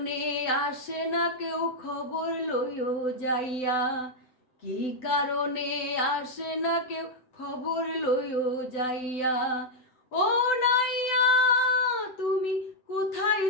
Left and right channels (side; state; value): right; late; 7.9 ms